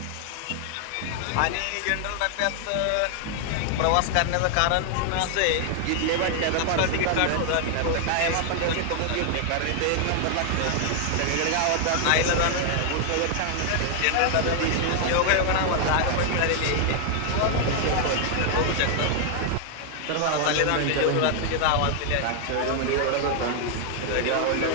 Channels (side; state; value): both; different; correlation 0.00